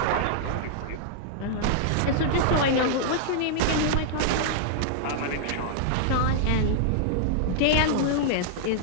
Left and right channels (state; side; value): different; both; correlation -0.01